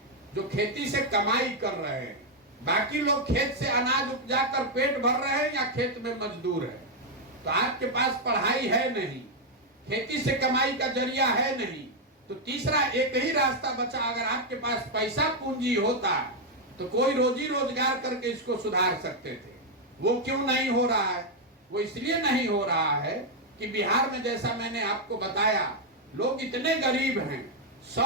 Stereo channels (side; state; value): both; normal; correlation 0.00